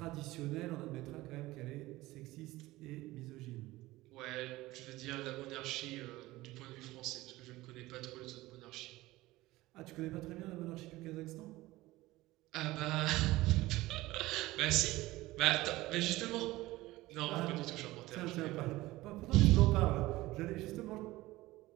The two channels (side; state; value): left; quieter; 18.5 dB